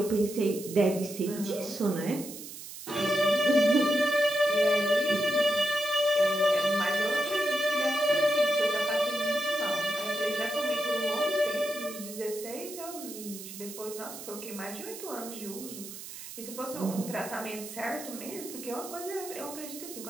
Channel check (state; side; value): noise; right; hiss, 12 dB below the sound